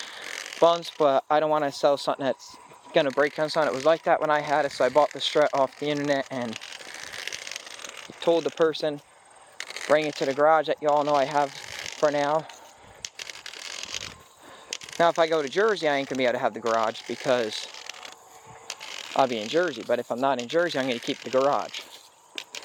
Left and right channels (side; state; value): both; identical; correlation 1.00